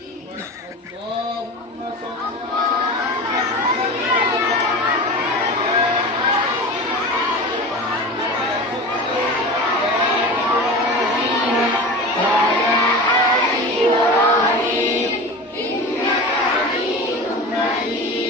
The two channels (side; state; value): both; normal; correlation 0.31